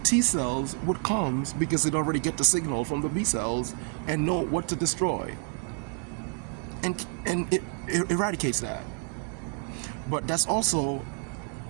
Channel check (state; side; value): quieter; left; 38.1 dB